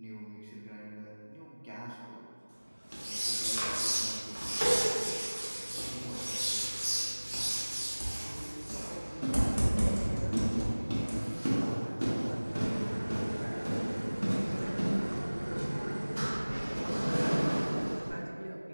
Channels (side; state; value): both; inverted; correlation -1.00